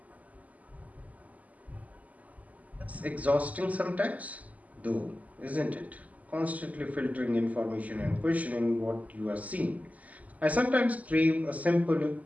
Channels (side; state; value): left; late; 0.074 ms